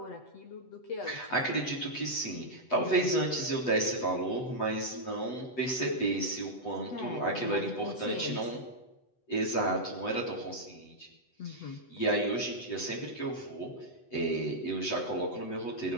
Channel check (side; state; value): right; late; 8.0 ms